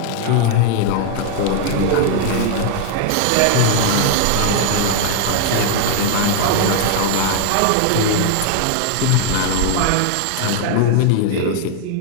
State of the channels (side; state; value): both; different; correlation 0.00